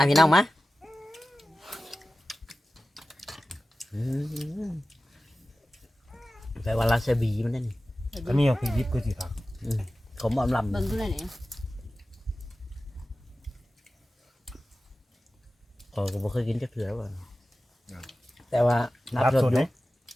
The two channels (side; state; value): both; normal; correlation 0.95